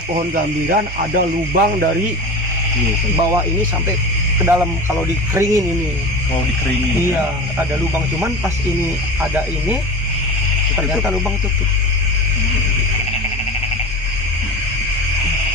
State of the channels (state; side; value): normal; both; correlation 0.30